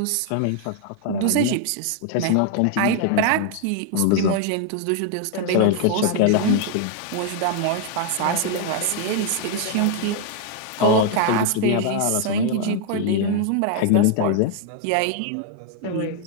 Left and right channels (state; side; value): different; both; correlation 0.00